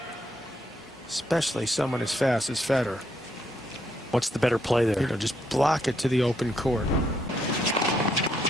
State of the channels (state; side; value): normal; both; correlation 0.75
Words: Especially someone as fast as Federer. What's the better play there? You know, just block it to the open court.